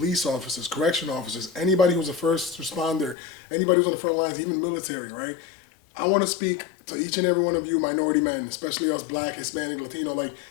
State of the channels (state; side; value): drops out; right; at 3.2 s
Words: officers, correction officers, anybody who's a first responder, anybody who's on the front lines, even military, right? I want to speak to each and every one of you minority men, especially us Black, Hispanic, Latino.